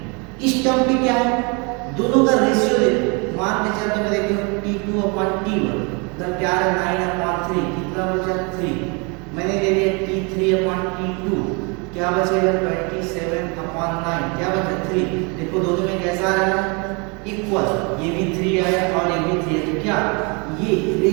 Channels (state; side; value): quieter; left; 31.6 dB